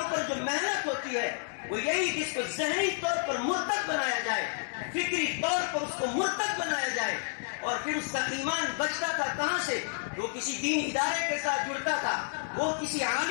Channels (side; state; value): right; silent; digital silence